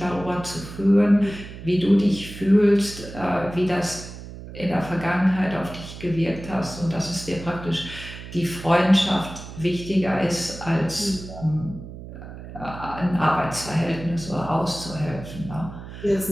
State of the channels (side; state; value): right; noise; hum, 13 dB below the sound